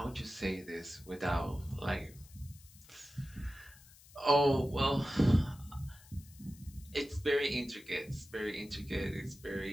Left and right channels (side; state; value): left; noise; hiss, 23 dB below the sound